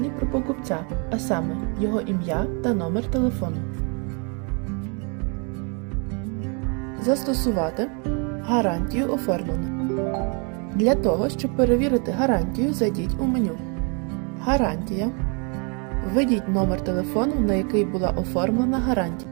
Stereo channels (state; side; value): quieter; left; 36.0 dB